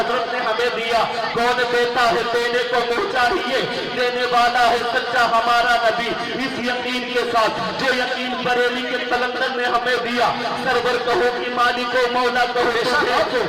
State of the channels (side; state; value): both; identical; correlation 1.00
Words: نے ہمیں دیا۔ کون دیتا ہے دینے کو منہ چاہیے، دینے والا ہے سچا ہمارا نبی۔ اس یقین کے ساتھ جو یقین بریلی کے قلندر نے ہمیں دیا، سرور کہو کہ مالک و مولا کہو،